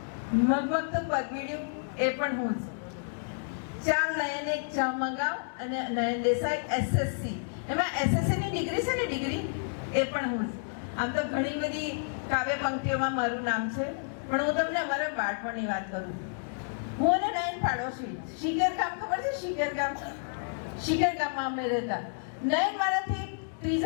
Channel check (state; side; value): silent; right; digital silence